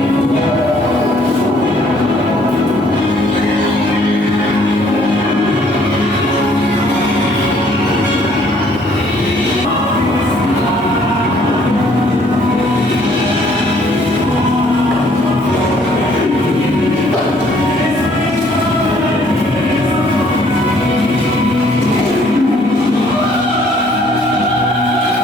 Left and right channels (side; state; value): both; normal; correlation 0.62